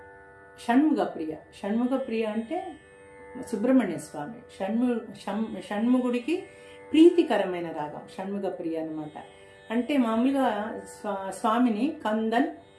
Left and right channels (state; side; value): identical; both; correlation 1.00